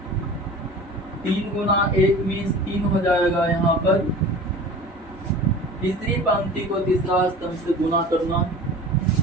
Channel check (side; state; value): both; normal; correlation 0.38